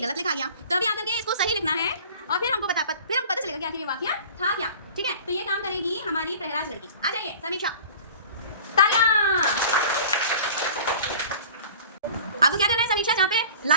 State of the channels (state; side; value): inverted; both; correlation -0.43